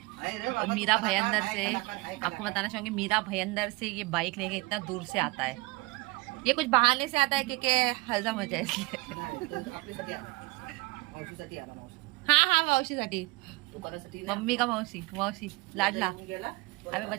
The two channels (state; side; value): quieter; left; 23.9 dB